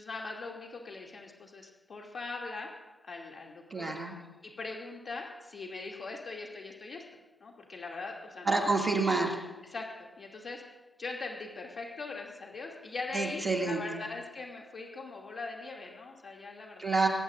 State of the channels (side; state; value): both; normal; correlation 0.82